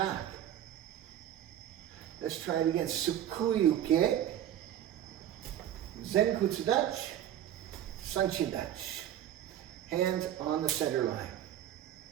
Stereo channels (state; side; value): quieter; left; 11.3 dB